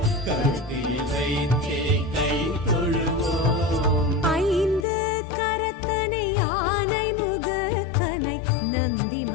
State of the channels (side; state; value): right; drops out; at 4.9 s